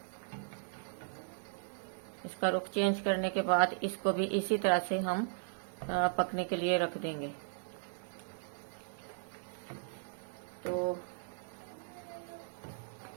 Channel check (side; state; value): left; silent; digital silence